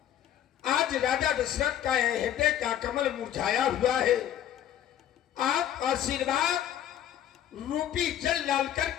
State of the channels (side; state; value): right; quieter; 10.9 dB